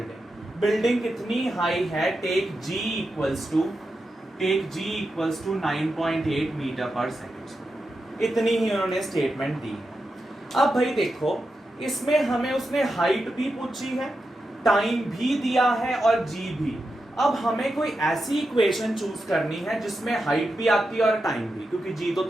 Building कितनी हाई है? Take g equals to 9.8 metre पर सेकेंड. इतनी ही उन्होंने स्टेटमेंट दी. अब भाई देखो इसमें हमें उसने हाइट भी पूछी है, टाइम भी दिया है और g भी. अब हमें कोई ऐसी इक्वेशन चूज करनी है जिसमें हाइट भी आती है और टाइम भी, क्योंकि g तो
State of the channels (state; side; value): normal; both; correlation 0.88